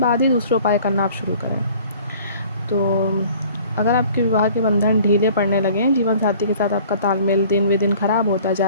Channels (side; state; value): both; inverted; correlation -0.50